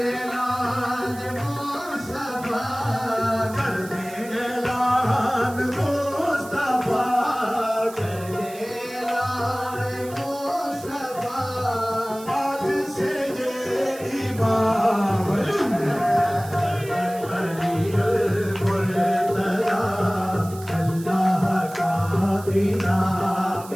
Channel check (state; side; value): noise; right; hiss, 17 dB below the sound